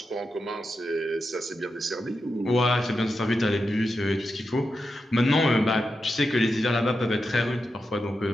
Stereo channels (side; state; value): both; normal; correlation 0.88